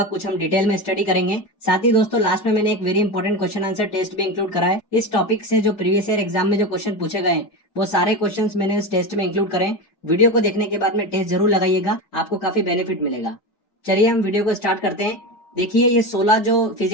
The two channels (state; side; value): late; right; 4.9 ms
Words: कुछ हम डिटेल में स्टडी करेंगे। साथ ही दोस्तों लास्ट में मैंने एक very important question answer test भी इंक्लूड करा है। इस टॉपिक से जो प्रीवियस ईयर एग्जाम में जो क्वेश्चन पूछे गए वो सारे क्वेश्चन मैंने इस टेस्ट में इंक्लूड करें। वीडियो को देखने के बाद में टेस्ट जरूर लगाइएगा, आपको काफी बेनिफिट मिलेगा। चलिए हम वीडियो को स्टार्ट करते हैं। देखिए ये 16 जो